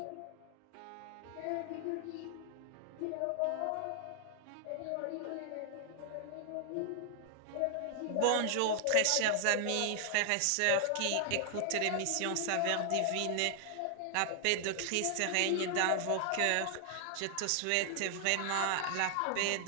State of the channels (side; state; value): both; different; correlation 0.00